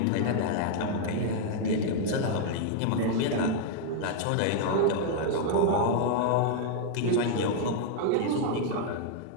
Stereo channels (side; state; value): both; different; correlation 0.00